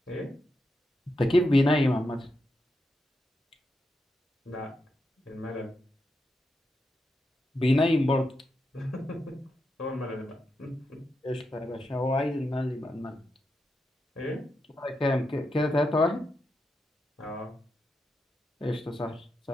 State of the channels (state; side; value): normal; both; correlation 0.86